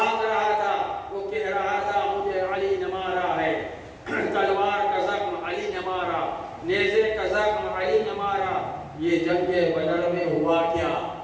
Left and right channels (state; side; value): identical; both; correlation 1.00